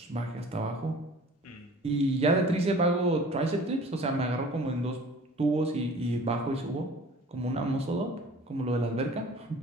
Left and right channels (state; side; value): normal; both; correlation 0.47